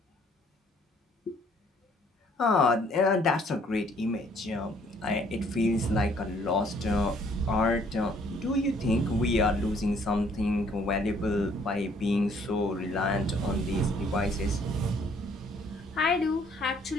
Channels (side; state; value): both; normal; correlation 0.62